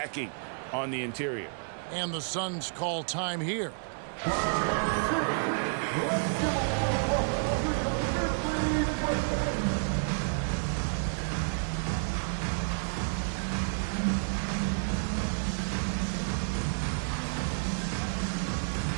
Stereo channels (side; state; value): left; silent; 58 dB below the other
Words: on the interior. And the Suns call time here.